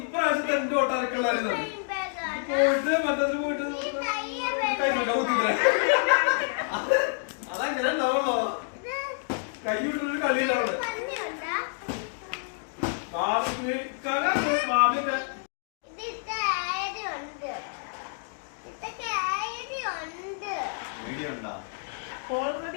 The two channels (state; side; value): silent; right; digital silence